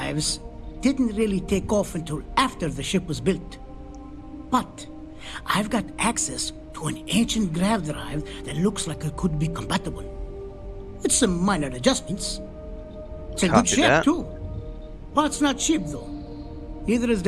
didn't really take off until after the ship was built. But I've got access to an ancient grav drive that looks like it could be compatible. With some minor adjustments. It's a good Copy ship that. too. Parts not cheap though. Neither is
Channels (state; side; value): identical; both; correlation 1.00